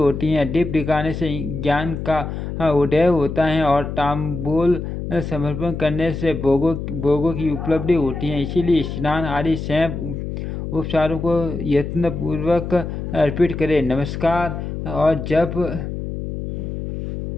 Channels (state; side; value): noise; left; hum, 6 dB below the sound